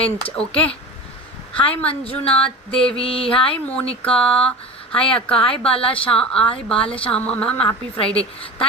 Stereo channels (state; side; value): normal; both; correlation 0.32